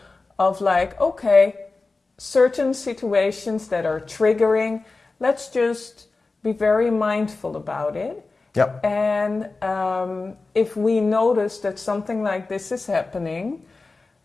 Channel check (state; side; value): quieter; right; 3.7 dB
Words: of like, okay, certain situations that are triggering, let's just be very mindful about it. Yep. And if we notice that something like this is happening,